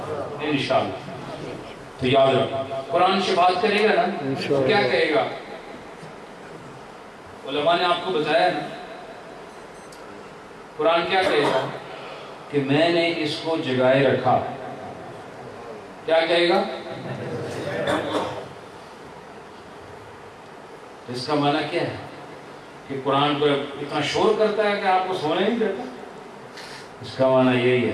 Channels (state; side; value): identical; both; correlation 1.00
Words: انشاءاللہ۔ تو یاد رکھو قرآن شفاعت کرے گا نا، کیا کہے گا؟ علماء نے آپ کو بتایا نا، قرآن کیا کہے گا کہ میں نے اس کو جگائے رکھا، کیا کہے گا؟ اس کا معنی کیا ہے کہ قرآن کو اتنا شور کرتا ہے کہ آپ کو سونے نہیں دیتا؟ اس کا معنی یہی